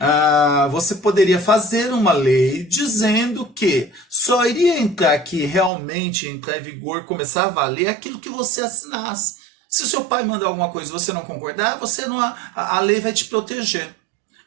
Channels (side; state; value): left; drops out; at 5.7 s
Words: você poderia fazer uma lei dizendo que só iria entrar aqui, realmente entrar em vigor, começar a valer aquilo que você assinasse. Se o seu pai mandar alguma coisa e você não concordar, você não, a lei vai te proteger.